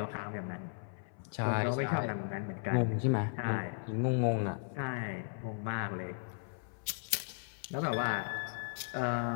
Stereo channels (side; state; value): right; silent; 54 dB below the other